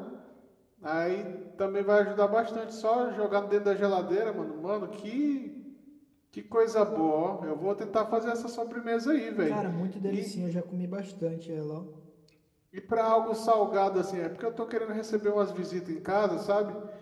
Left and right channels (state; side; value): identical; both; correlation 1.00